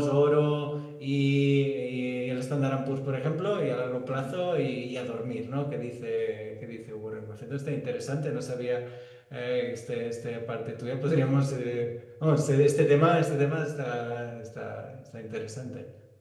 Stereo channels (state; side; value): identical; both; correlation 1.00